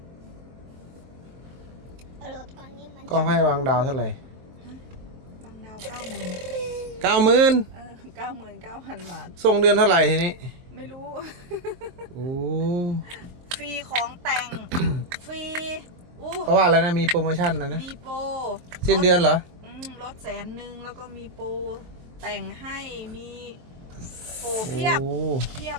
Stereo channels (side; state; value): left; late; 23 ms